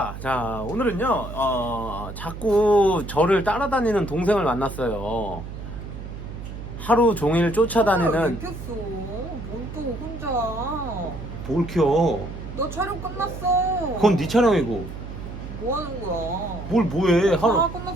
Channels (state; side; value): noise; right; hum, 10 dB below the sound